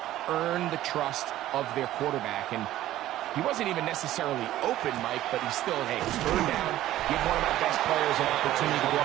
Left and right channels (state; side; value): quieter; left; 14.1 dB